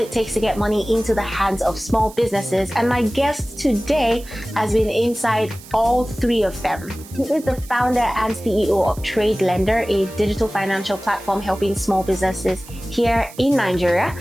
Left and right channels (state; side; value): noise; right; hiss, 19 dB below the sound